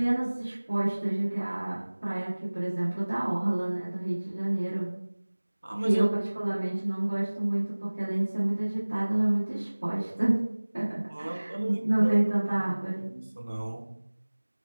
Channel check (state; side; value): inverted; both; correlation -1.00